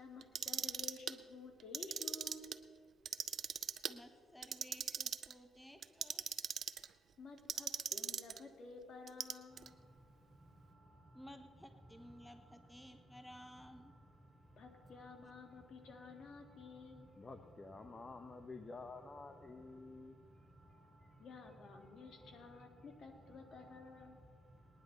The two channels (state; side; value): quieter; left; 4.8 dB